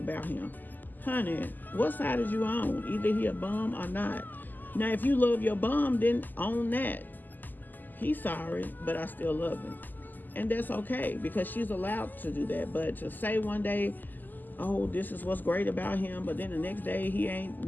him. Honey, what side is you on? Either he a bum or not. Now, if you love your bum, then own that. He's sorry, but I still love him. And that's okay, because she's allowed to do that. But to say one day, oh, this is what's great about him, but then the next day he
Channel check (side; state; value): right; late; 0.086 ms